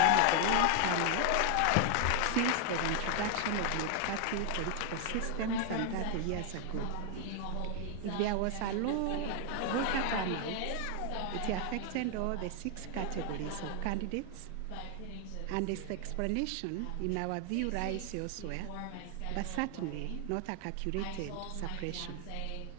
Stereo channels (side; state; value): both; different; correlation 0.00